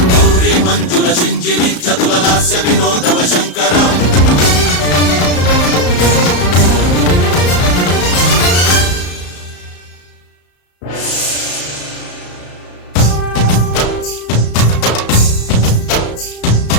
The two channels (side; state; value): right; late; 34 ms